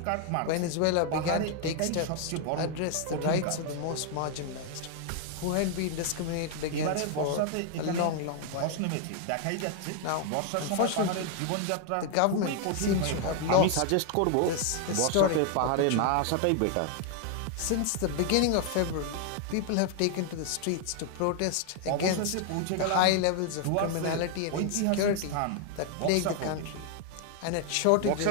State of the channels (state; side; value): different; both; correlation 0.00